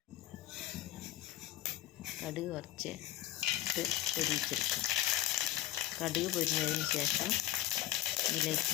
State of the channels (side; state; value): right; quieter; 13.7 dB